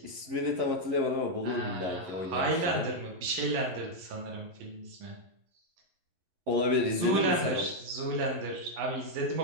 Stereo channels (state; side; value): late; left; 11 ms